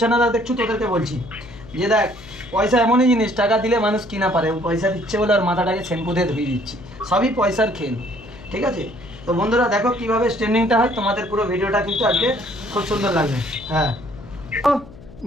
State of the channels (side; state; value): left; noise; hum, 19 dB below the sound